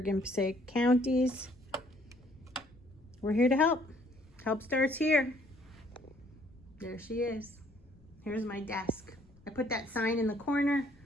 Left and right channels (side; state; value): left; noise; rumble, 28 dB below the sound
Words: Passaic counties. We're here to help. Help starts here. There she is. Here's my desk. I put that sign in the corner.